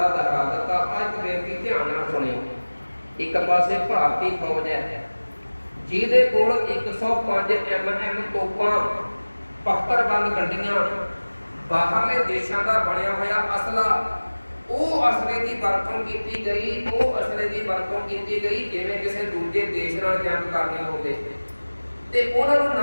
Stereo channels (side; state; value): both; inverted; correlation -1.00